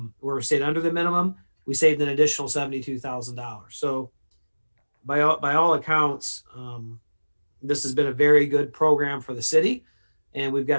we're stayed under the minimum, we saved an additional $72,000. So by all accounts, this has been a very good program for the city, and we've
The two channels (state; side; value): inverted; both; correlation -1.00